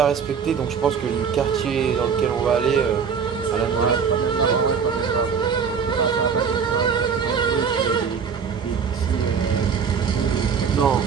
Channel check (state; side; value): quieter; left; 6.5 dB